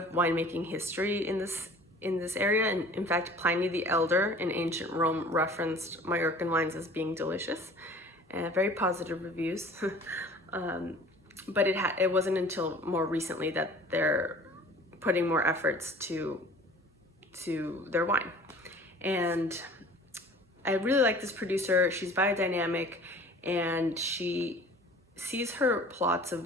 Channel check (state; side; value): normal; both; correlation 0.46